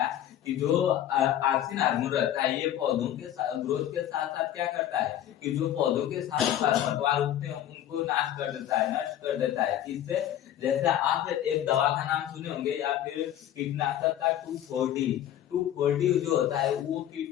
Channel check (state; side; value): quieter; right; 11.5 dB